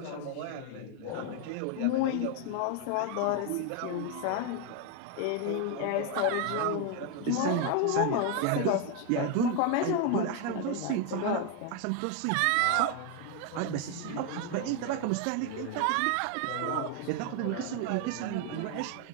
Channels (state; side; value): different; both; correlation 0.01